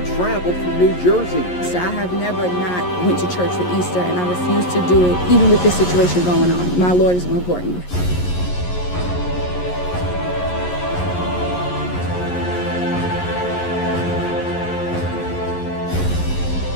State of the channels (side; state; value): right; late; 11 ms